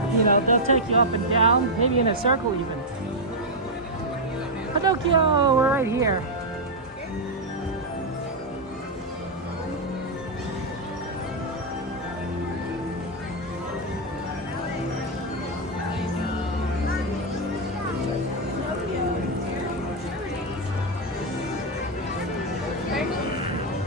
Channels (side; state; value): both; normal; correlation 0.00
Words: you know, they'll take you up and down, maybe in a circle even. Pinocchio, we're right here.